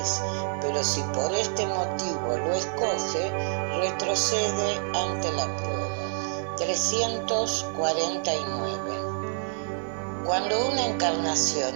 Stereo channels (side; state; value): left; silent; 60 dB below the other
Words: pero si por este motivo lo escoge, retrocede ante la prueba. 349. Cuando una